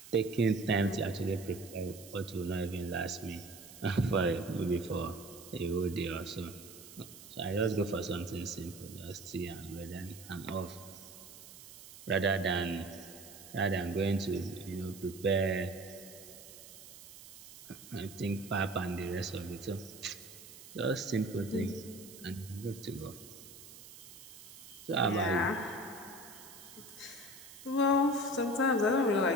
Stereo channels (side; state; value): right; noise; hiss, 16 dB below the sound